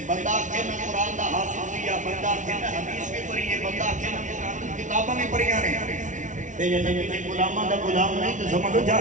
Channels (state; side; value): late; left; 0.37 ms